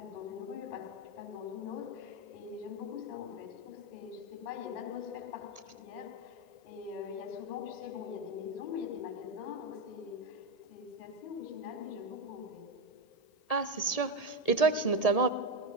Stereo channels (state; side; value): late; right; 1.8 ms